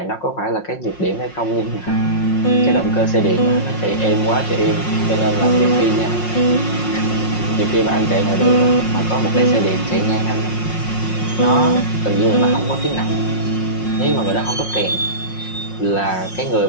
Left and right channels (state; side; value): late; right; 5.6 ms